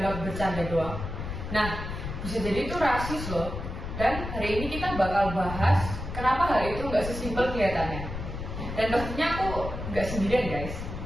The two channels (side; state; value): left; noise; rumble, 7 dB below the sound